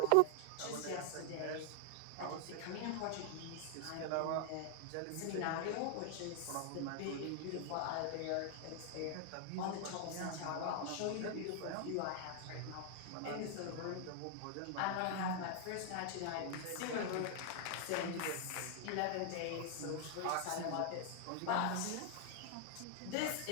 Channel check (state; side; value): different; both; correlation 0.00